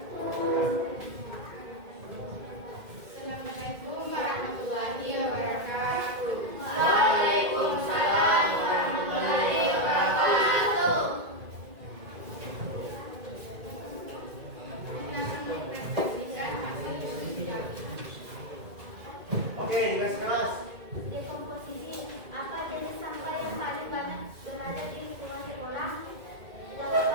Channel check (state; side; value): late; left; 2.2 ms